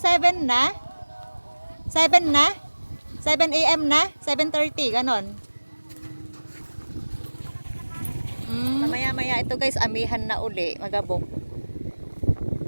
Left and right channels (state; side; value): inverted; both; correlation -1.00